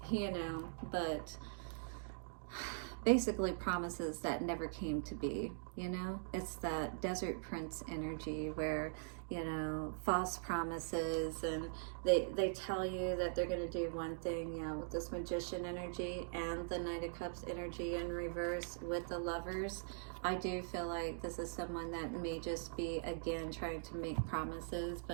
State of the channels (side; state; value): left; silent; digital silence